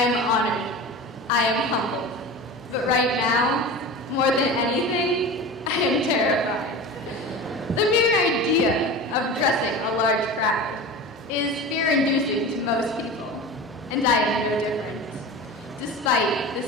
honored. I am humbled. But right now, more than anything, I am terrified. The mere idea of addressing a large crowd is fear-inducing to most people, and I am no different. Despite the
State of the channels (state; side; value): normal; both; correlation 0.31